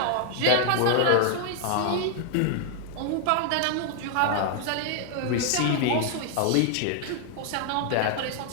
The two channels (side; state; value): both; different; correlation 0.00